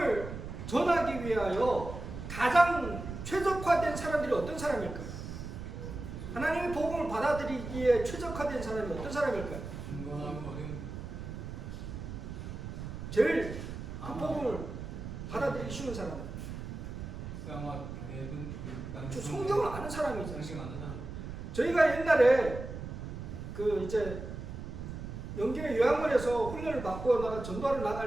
전하기 위하여 가장 최적화된 사람들이 어떤 사람일까요? 하나님의 복음을 받아들이기에 최적화된 사람이 어떤 사람일까요? 제일 그 복음을 받아들이기 쉬운 사람. 성경을 아는 사람이잖아요. 저희가 옛날에 그 이제 영계 요양원에서 훈련을 받고 나가 전도하러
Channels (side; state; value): right; noise; rumble, 8 dB below the sound